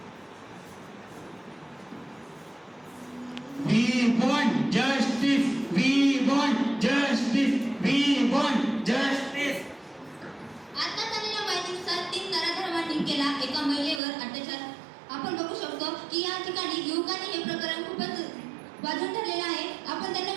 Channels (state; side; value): drops out; left; at 14.0 s